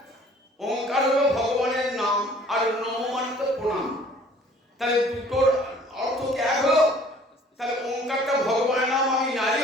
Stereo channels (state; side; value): normal; both; correlation 0.54